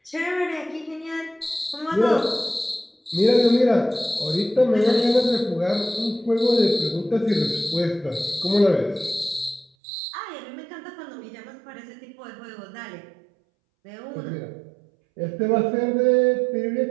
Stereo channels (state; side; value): drops out; left; at 9.7 s